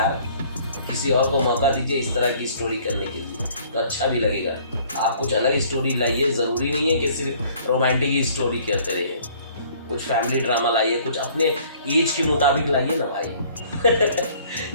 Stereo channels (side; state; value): both; inverted; correlation -0.56